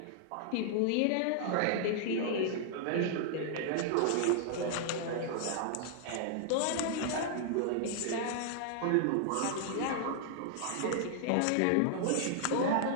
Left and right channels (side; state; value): both; different; correlation -0.01